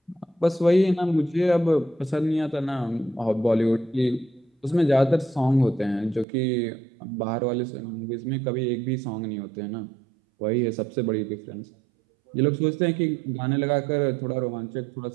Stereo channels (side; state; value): left; drops out; at 6.2 s